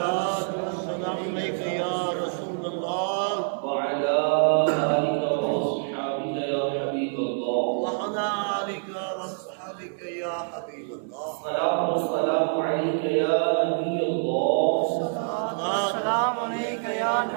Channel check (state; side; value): silent; left; digital silence